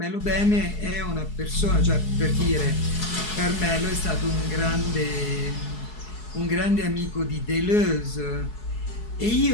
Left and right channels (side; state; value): right; late; 4.7 ms